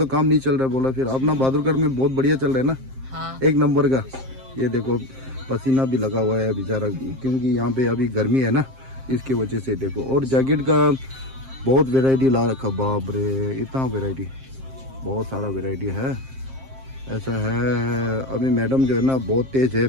काम नहीं चल रहा है बोला, फिर अपना बहादुरगढ़ में बहुत बढ़िया चल रहा है ना। हाँ। एक नंबर का। ये देखो पसीना भी लगा हुआ है बेचारा, क्योंकि यहाँ पे अभी गर्मी है ना, इसकी वजह से। देखो और जैकेट का बहुत वैरायटी ला रखा, बाप रे इतना वैरायटी, बहुत सारा वैरायटी है। ऐसा है, अभी मैडम जो है ना बहुत तेज है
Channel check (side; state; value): left; late; 7.6 ms